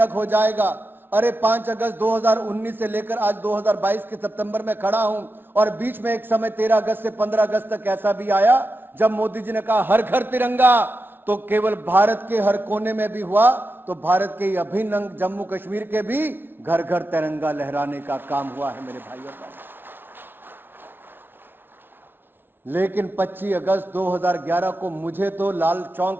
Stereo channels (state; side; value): late; left; 0.10 ms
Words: हो जाएगा। अरे 5 अगस्त 2019 से लेकर आज 2022 के सितंबर में खड़ा हूं, और बीच में एक समय 13 अगस्त से 15 अगस्त तक ऐसा भी आया जब मोदी जी ने कहा हर घर तिरंगा, तो केवल भारत के हर कोने में भी हुआ, तो भारत के अभिन्न अंग जम्मू कश्मीर के भी घर घर तिरंगा लहराने का काम हुआ है मेरे भाइयों का। लेकिन 25 अगस्त 2011 को मुझे तो लाल